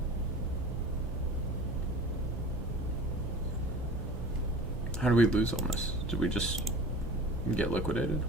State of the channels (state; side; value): normal; both; correlation 0.39